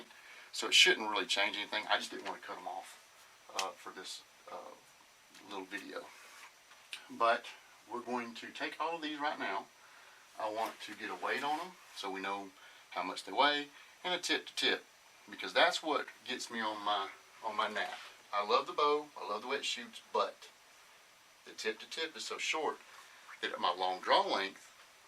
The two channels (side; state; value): both; identical; correlation 1.00